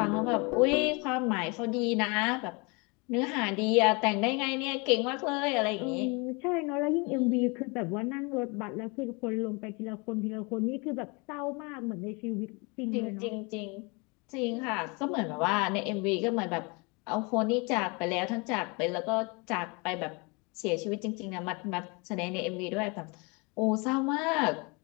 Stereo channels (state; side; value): quieter; right; 29.7 dB